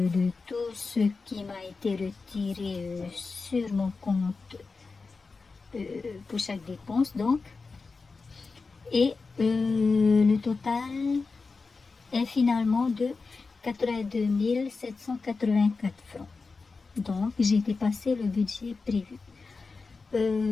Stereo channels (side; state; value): right; quieter; 4.3 dB